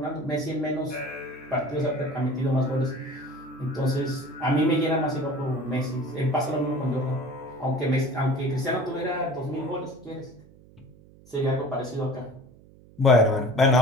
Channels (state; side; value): noise; right; hum, 24 dB below the sound